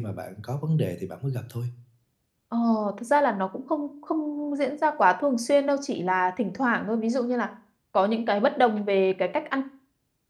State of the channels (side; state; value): both; identical; correlation 1.00